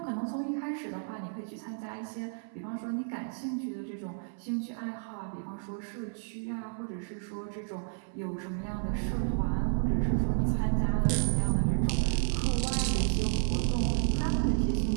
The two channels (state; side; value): silent; left; 57 dB below the other